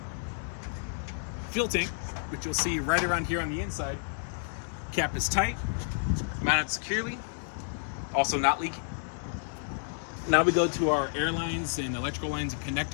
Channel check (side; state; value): right; silent; digital silence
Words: Fuel tank, which you'll see right around here on the inside, cap is tight, mounted securely, also not leaking. Now we go to our air lines and electrical lines and